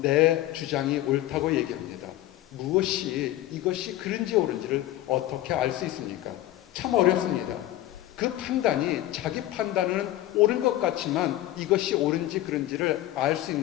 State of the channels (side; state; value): right; quieter; 14.7 dB